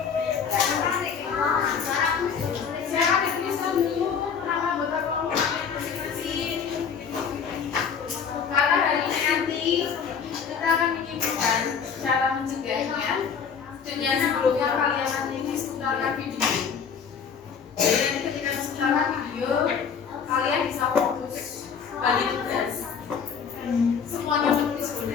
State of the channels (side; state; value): right; quieter; 6.7 dB